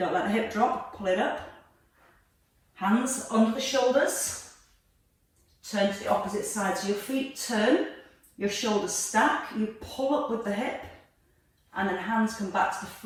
let the hip drop, pull it up. Hands under the shoulders, turn to the opposite side. So your feet turn, your shoulders stack, you pull up with the hip, and then hands come back to the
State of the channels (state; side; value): identical; both; correlation 1.00